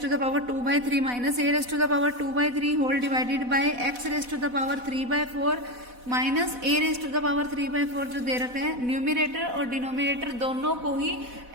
to the power 2/3 minus a raise to the power 2/3 whole divided by x raise to the power 3/4 minus a raise to the power 3/4 जो दे रखा है, न्यूमिनेटर और डिनोमिनेटर दोनों को ही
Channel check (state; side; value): late; left; 4.1 ms